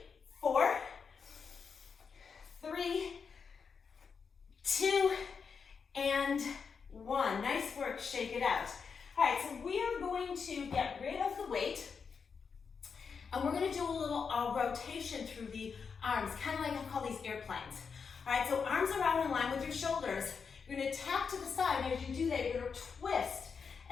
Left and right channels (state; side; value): quieter; right; 5.8 dB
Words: 4, 3, 2, and 1. Nice work, shake it out. All right, so we are going to get rid of the weight, and we're gonna do a little rotation through the arms, kind of like I call these airplanes. All right, so arms are out in line with your shoulders. You're gonna tap to the side, and as you do that, you're gonna twist